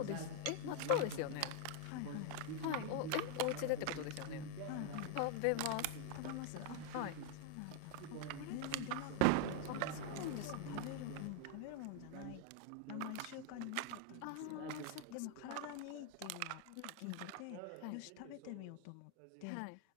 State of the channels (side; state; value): both; different; correlation 0.00